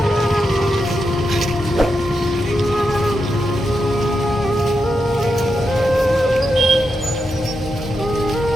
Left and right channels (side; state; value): both; normal; correlation 0.86